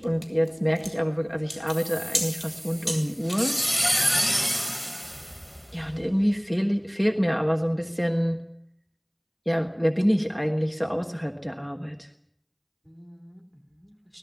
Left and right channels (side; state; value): both; identical; correlation 1.00